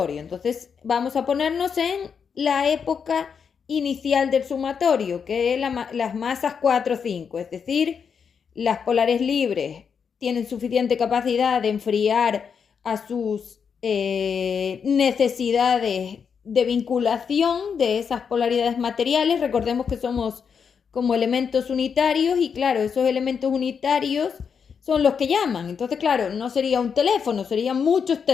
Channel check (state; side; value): quieter; right; 6.5 dB